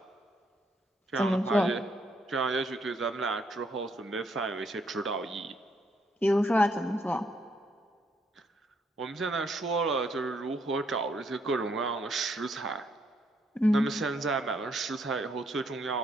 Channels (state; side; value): normal; both; correlation 0.73